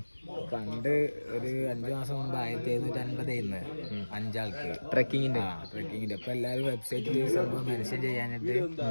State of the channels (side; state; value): both; inverted; correlation -1.00